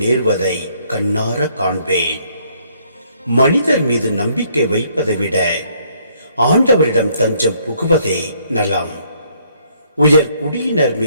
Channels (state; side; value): inverted; both; correlation -0.67